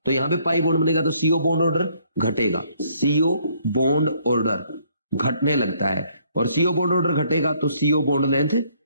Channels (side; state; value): both; inverted; correlation -0.66